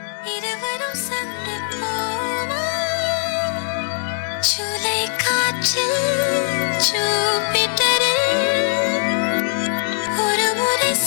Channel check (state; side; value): silent; right; digital silence